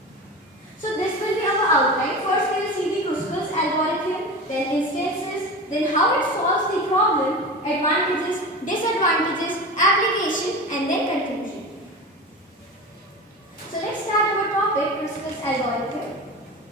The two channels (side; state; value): both; normal; correlation 0.29